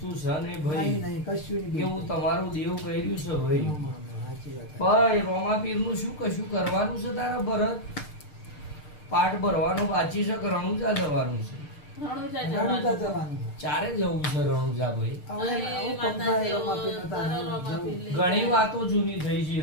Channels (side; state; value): right; late; 6.6 ms